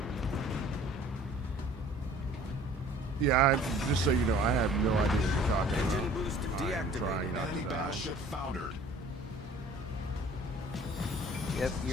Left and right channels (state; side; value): normal; both; correlation 0.51